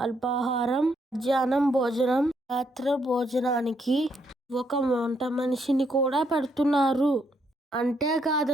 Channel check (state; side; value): normal; both; correlation 0.75